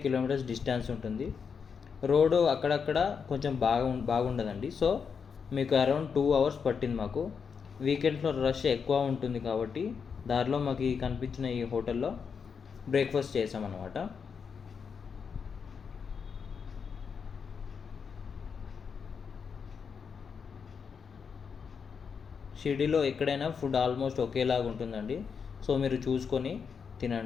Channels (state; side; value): quieter; right; 6.2 dB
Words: కిలోమీటర్స్ డిస్టెన్స్ ఉంటుంది. రోడ్డు అక్కడక్కడ కొంచెం బాగుండదండి. సో మీకు అరౌండ్ 2 అవర్స్ పట్టింది మాకు. వీకెండ్స్లో రష్ ఎక్కువ ఉంటుంది కాబట్టి దారిలో మాకు కనిపించిన ఈ హోటల్లో బ్రేక్ఫాస్ట్ చేసామన్నమాట. షిరిడీలో ఎక్కడైనా ఫుడ్ ఆల్మోస్ట్ ఒకేలాగా ఉంటుందండి. సో మీరు చూసుకొని